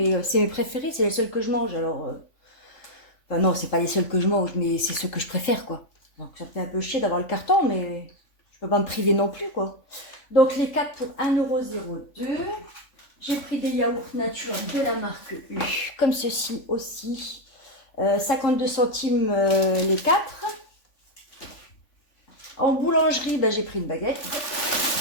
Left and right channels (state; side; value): late; right; 3.5 ms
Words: c'est mes préférés, c'est les seuls que je mange. Alors, enfin non, c'est pas les seuls que je mange, mais c'est ceux que je préfère, quoi. Donc ça me fait un peu chier d'avoir le carton, mais je peux pas me priver non plus, quoi. Donc les 4 pour 1,02 €. J'ai pris des yaourts nature de la marque U, comme ceci aussi. 52 centimes les 4. En boulangerie, ben, j'ai pris une baguette.